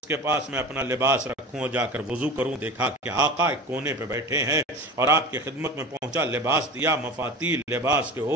کے پاس میں اپنا لباس رکھوں اور جا کر وضو کروں۔ دیکھا کہ آقا ایک کونے پہ بیٹھے ہیں اور آپ کی خدمت میں پہنچا، لباس دیا، مفاتی لباس کے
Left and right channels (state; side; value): normal; both; correlation 0.34